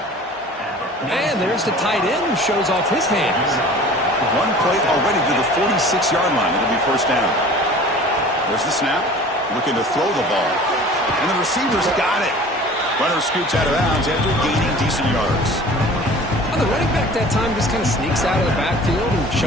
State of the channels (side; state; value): both; normal; correlation 0.44